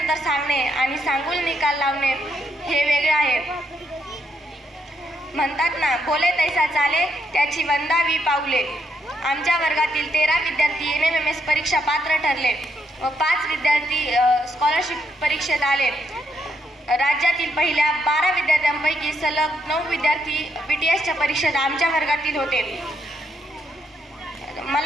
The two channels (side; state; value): both; normal; correlation 0.77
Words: सांगणे आणि सांगून निकाल लावणे हे वेगळे आहे. म्हणतात ना, बोले तैसा चाले त्याची वंदावी पाऊले. आमच्या वर्गातील 13 विद्यार्थी NMMS परीक्षा पात्र ठरले व 5 विद्यार्थी स्कॉलरशिप परीक्षेत आले. राज्यातील पहिल्या 12 विद्यार्थ्यांपैकी सलग 9 विद्यार्थी BTSच्या परीक्षेत आमच्या वर्गातील होते.